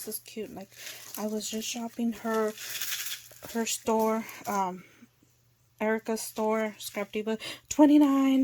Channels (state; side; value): identical; both; correlation 1.00